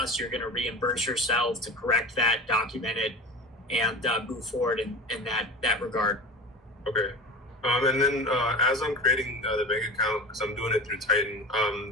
You're going to reimburse yourself to correct that, document it, and move forward in that regard. Okay. And then as I'm creating the bank account, because I'm doing it through Titan,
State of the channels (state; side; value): normal; both; correlation 0.32